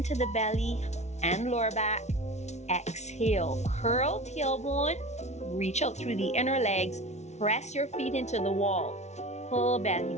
the belly and lower back. Exhale, curl tailbone. Reach out through the inner legs. Press your feet into the wall. Pull belly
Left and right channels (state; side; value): late; right; 0.32 ms